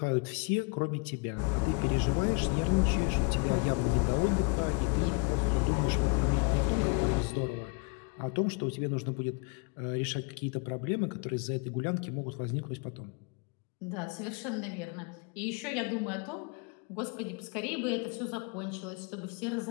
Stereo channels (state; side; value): quieter; right; 31.6 dB